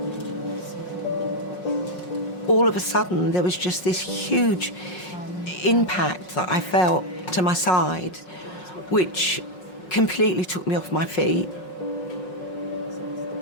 All of a sudden, there was just this huge impact that I felt to my side, which completely took me off my feet.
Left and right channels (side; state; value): right; late; 5.5 ms